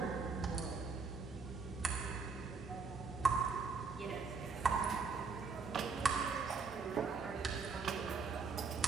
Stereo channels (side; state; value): left; quieter; 4.9 dB